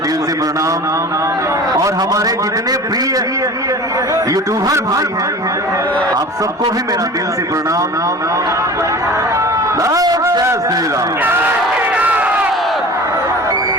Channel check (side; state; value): both; normal; correlation 0.38